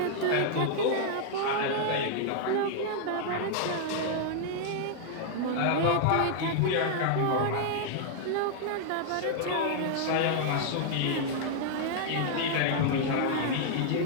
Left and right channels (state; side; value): different; both; correlation -0.01